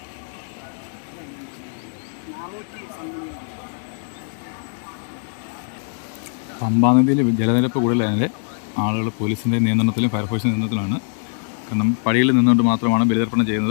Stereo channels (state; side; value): silent; right; digital silence